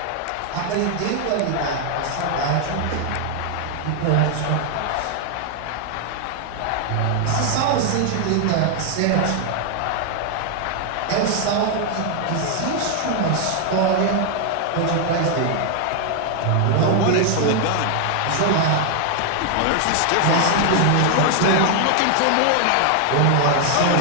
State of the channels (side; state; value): both; different; correlation 0.00